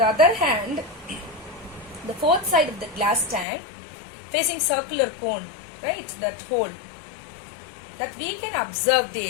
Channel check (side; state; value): right; drops out; at 3.5 s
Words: other hand, the fourth side of the glass tank facing circular cone, right, that hole, that we can observe